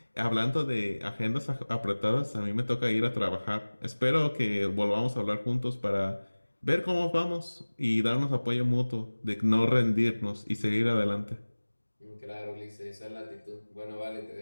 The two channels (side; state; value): both; inverted; correlation -1.00